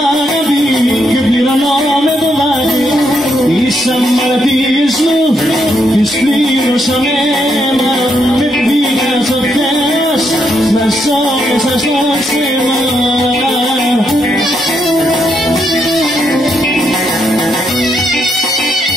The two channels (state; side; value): normal; both; correlation 0.78